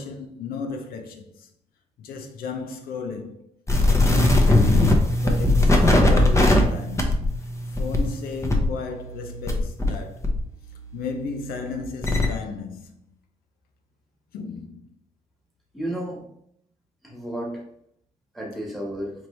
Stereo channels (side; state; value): both; normal; correlation 0.78